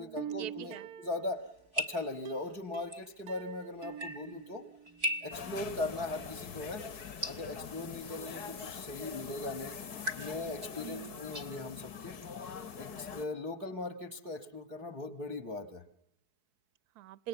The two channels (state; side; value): late; left; 4.6 ms